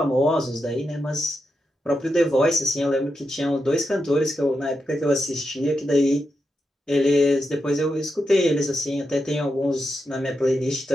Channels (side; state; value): both; normal; correlation 0.86